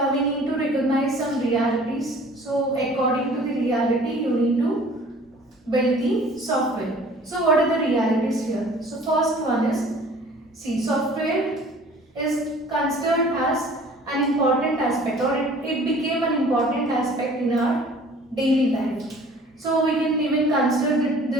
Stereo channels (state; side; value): normal; both; correlation 0.50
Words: we need to recognize some realities. So according to the reality, you need to build the software. So what are the realities here? So first one is, see, software is considered as an important aspect, or it became an important aspect in our daily life. So we can even consider